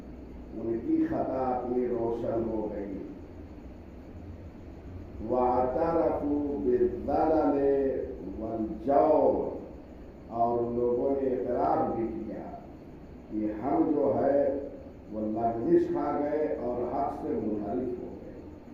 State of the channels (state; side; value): identical; both; correlation 1.00